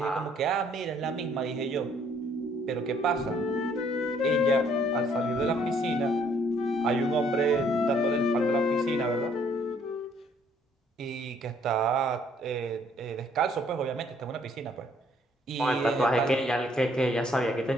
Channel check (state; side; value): normal; both; correlation 0.64